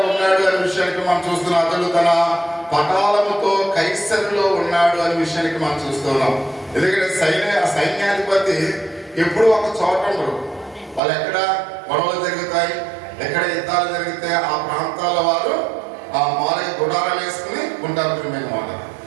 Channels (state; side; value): drops out; left; at 11.0 s